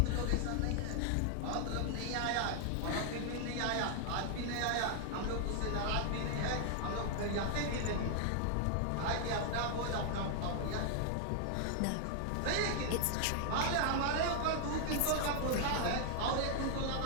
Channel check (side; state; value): both; different; correlation 0.00